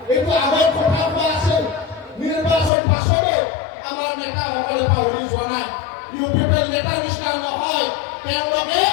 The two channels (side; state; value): right; drops out; at 2.7 s